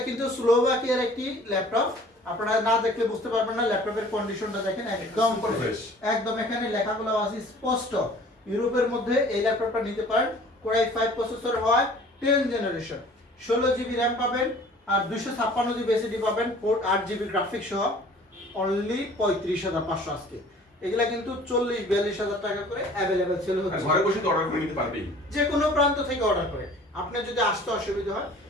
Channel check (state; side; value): normal; both; correlation 0.50